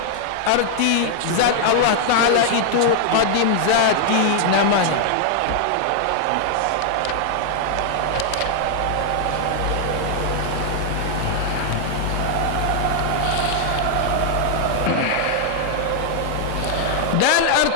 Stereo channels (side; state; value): both; different; correlation 0.00